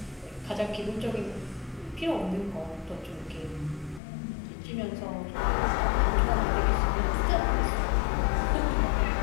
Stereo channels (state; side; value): drops out; right; at 4.0 s